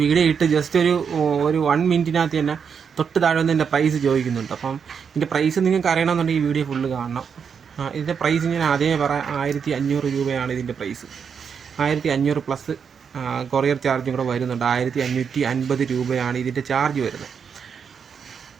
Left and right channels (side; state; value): left; quieter; 6.7 dB